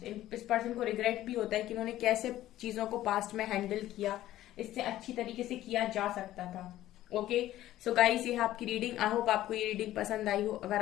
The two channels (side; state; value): right; quieter; 14.1 dB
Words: इस पर्सन को रिग्रेट भी होता है कि उन्होंने कैसे चीजों को पास्ट में हैंडल किया, इससे अच्छी तरीके से किया जा सकता था। ओके, सो गाइस ये है आपकी रीडिंग। आई होप आपको ये रीडिंग पसंद आई हो।